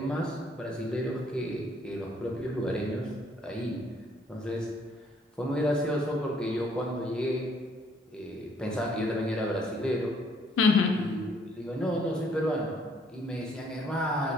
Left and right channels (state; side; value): normal; both; correlation 0.65